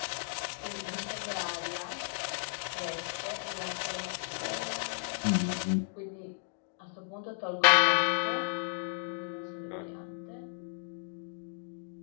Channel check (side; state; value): right; silent; digital silence